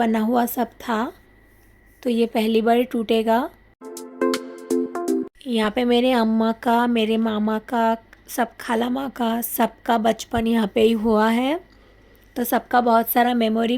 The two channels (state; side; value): identical; both; correlation 1.00